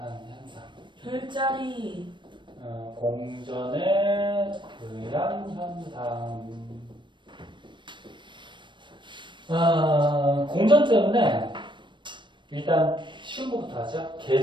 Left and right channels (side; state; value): left; late; 0.23 ms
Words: 현상. 별자리. 공전에 의한 현상. 공전 때문에 일단 쉬운 것부터 하자.